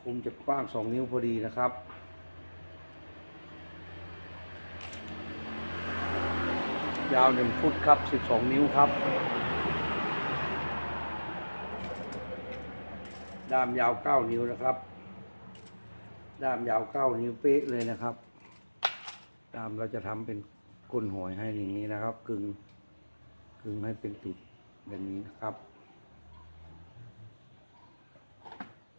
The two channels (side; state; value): both; inverted; correlation -1.00